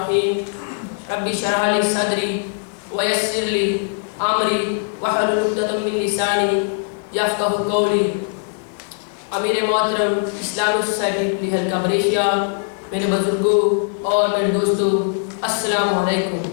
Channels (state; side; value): silent; right; digital silence